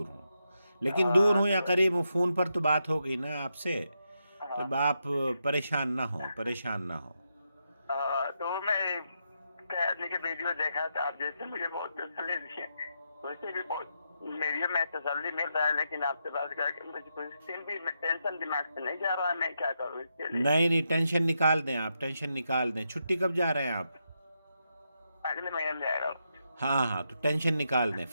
ہوں، لیکن دور ہوں یا تو قریب ہوں، فون پر تو بات ہو گئی نا آپ سے، تو ہاں آپ پریشان نہ ہوں، پریشان نہ ہوں۔ تو میں آدمی کے ویڈیو دیکھا تھا، آپ جیسے مجھے بہت تسلی دی ہے، ویسے بھی بہت میری میں تسلی مل رہا ہے، لیکن آپ سے بات کر کے مجھے کوئی دن بھی ٹینشن دماغ سے نہیں جا رہا ہے، میں کیا کروں اس کے لیے؟ نہیں نہیں، ٹینشن نکال دیں، آپ ٹینشن نکال دیں۔ چھٹی کب جا رہے ہیں آپ؟ اگلے مہینے میں جائے گا۔ ہاں ہاں، تو ٹینشن نکال دیں،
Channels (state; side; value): inverted; both; correlation -0.83